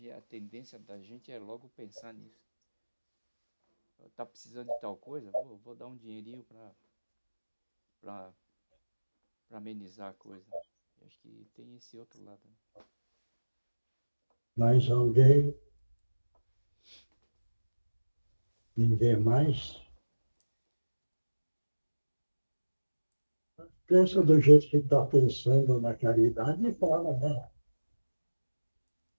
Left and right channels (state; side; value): inverted; both; correlation -1.00